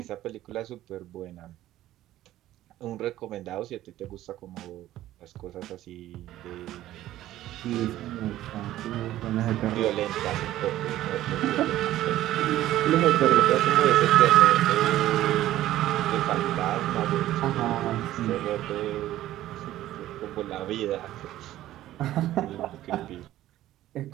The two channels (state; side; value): quieter; left; 14.1 dB